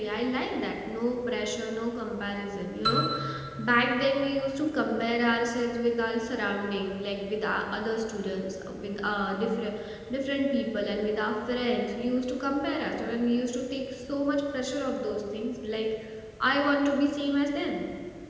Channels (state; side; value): identical; both; correlation 1.00